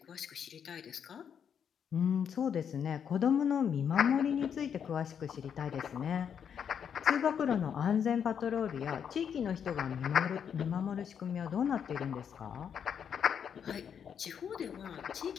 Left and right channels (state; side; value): quieter; right; 7.8 dB